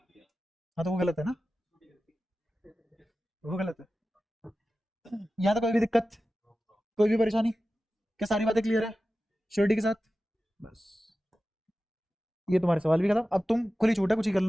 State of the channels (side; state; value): both; normal; correlation 0.94